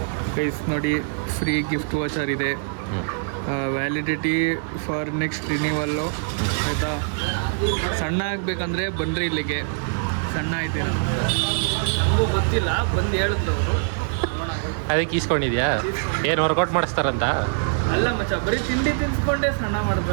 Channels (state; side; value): silent; left; digital silence